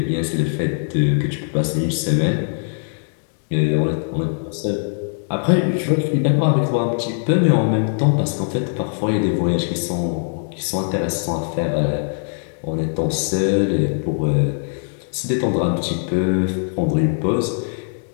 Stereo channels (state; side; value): silent; right; 65 dB below the other